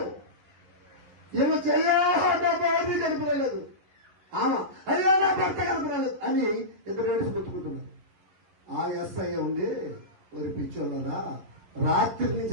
ఏమో చెయ్యా నా భార్య కనుపలేదు, అయ్యా నా భర్త కనుపలేదు అని ఇద్దరు ఏడుసు కొట్టుకుంటున్నారు. ఆ ఎస్ఐ ఉండి మరి పిచ్చోళ్ళరా, రాత్రి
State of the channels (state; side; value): late; left; 11 ms